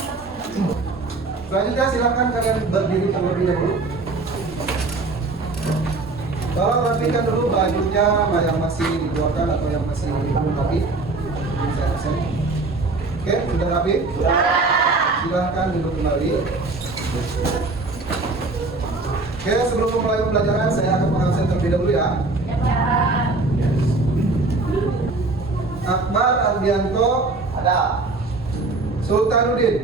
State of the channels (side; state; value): left; quieter; 3.4 dB